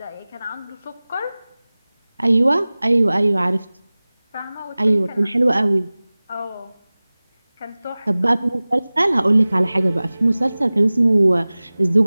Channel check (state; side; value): inverted; both; correlation -0.99